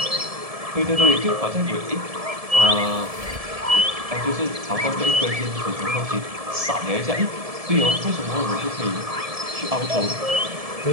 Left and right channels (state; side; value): late; left; 1.7 ms